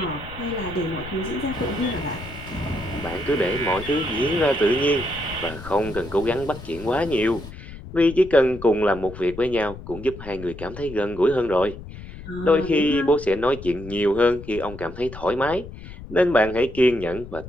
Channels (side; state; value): left; noise; rumble, 13 dB below the sound